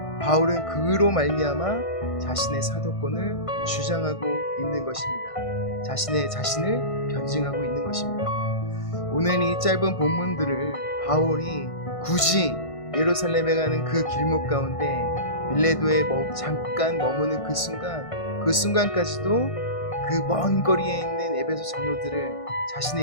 바울은 그로 말미암아 자신의 사도권을 주장하고 있는 것입니다. 자신을 변증하고 있는 것입니다. 오늘 이 짧은 본문들을 바울이 굳이 예루살렘에 가는 그 길목 가운데 밀레도에 잠깐 머무는 그 순간까지도 그 먼 거리에 있는 에베소 장로들을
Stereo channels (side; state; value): right; late; 1.5 ms